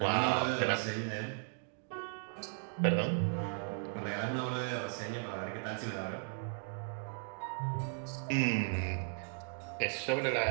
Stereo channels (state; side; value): silent; left; 54 dB below the other